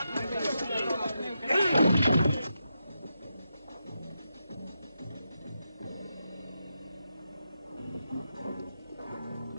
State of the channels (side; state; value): both; inverted; correlation -0.86